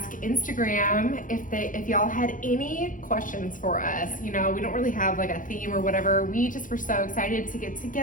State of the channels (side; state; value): right; late; 0.39 ms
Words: Instagram if y'all had any questions for us. You know, we don't really have like a theme or whatever. We just were so excited to get